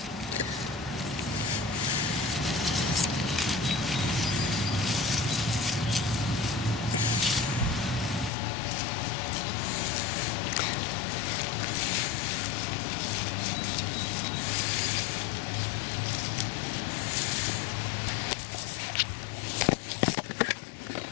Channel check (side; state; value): right; drops out; at 8.3 s